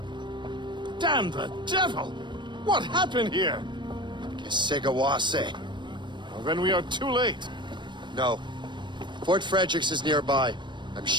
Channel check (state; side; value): late; left; 0.22 ms